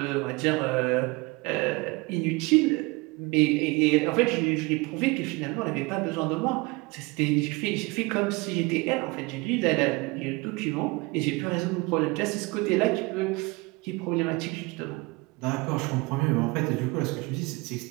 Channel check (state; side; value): quieter; left; 25.2 dB